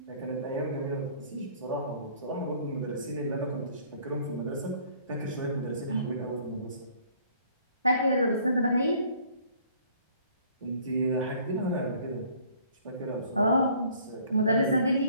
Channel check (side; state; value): both; inverted; correlation -0.56